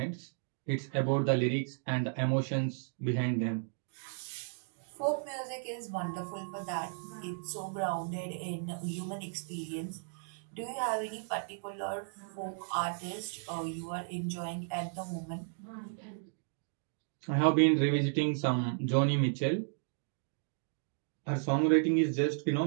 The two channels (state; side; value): silent; left; digital silence